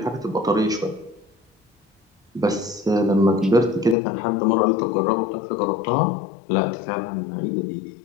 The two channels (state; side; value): drops out; right; at 4.0 s